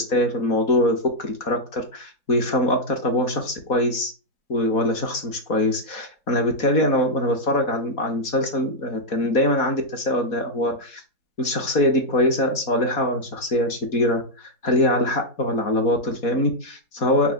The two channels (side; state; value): right; late; 4.1 ms